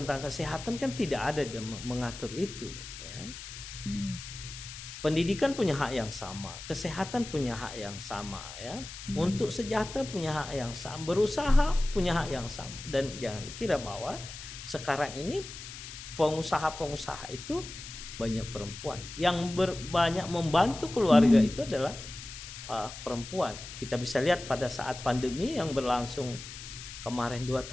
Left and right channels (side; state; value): left; noise; hiss, 12 dB below the sound